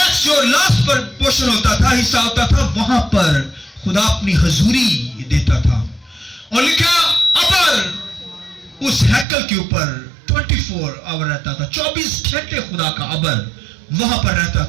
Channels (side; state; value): left; drops out; at 9.2 s